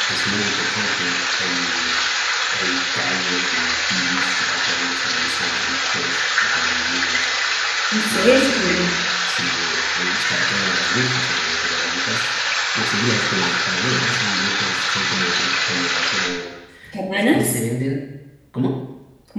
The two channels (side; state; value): both; identical; correlation 1.00